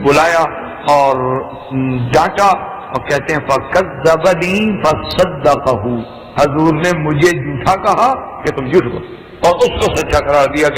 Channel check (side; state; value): both; identical; correlation 1.00